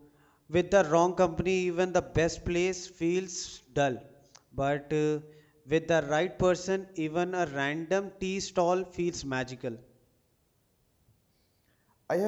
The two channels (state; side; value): identical; both; correlation 1.00